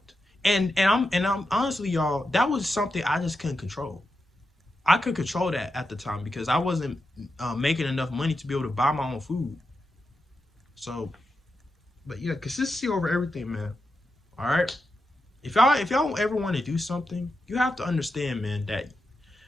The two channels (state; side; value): normal; both; correlation 0.88